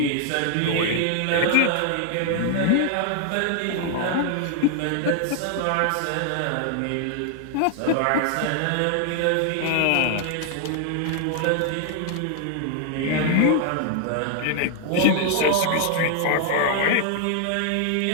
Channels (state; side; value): different; both; correlation 0.00